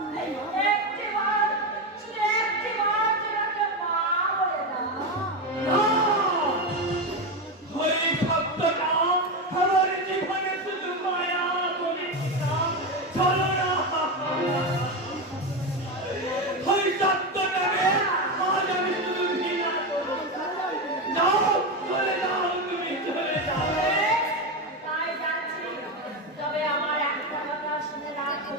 একটিবার শুধু একটিবার তোমাকে মা বলে দাও। ওই শব্দটা আমার জীবনে শুধু মায়া বলে না, চলো না। ওই শব্দটাকে আজ আমি শুধু ঘৃণা করি। যাও চলে যাও, তুমি চলে যাও। তাই যাচ্ছি। তবে আমার একটা কথা শুনে রাখো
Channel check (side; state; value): both; normal; correlation 0.14